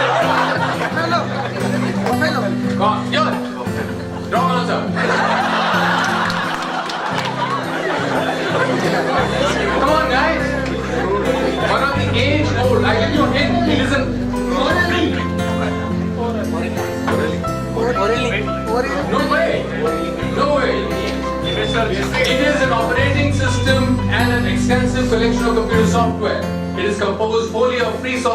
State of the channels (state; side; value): identical; both; correlation 1.00